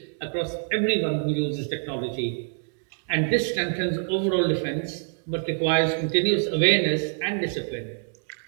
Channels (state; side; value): silent; left; 61 dB below the other